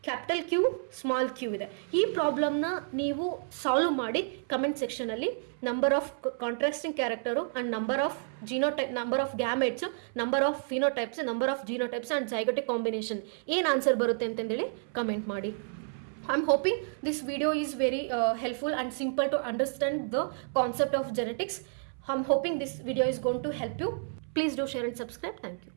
capital Q small Q ಇದೆ. ಈ ಪ್ರಾಬ್ಲಮ್ನ ನೀವು solve ಮಾಡಿ comment ಸೆಕ್ಷನಲ್ಲಿ number of contrasting character and number of genotype, number of gametes, number of phenotypes, number of genotypes and zygotic combination ಏನು answer ಬರುತ್ತೆ ಅಂತಂದೇಳಿ comment ಮಾಡಿ. I am hoping this video is very helpful and simple to understand the concept of genetics. I am hoping this video is going to help you. Please do share and subscribe. Thank you.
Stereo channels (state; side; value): silent; left; 57 dB below the other